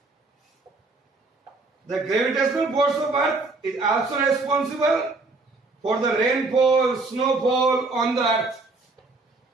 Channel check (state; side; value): quieter; left; 3.5 dB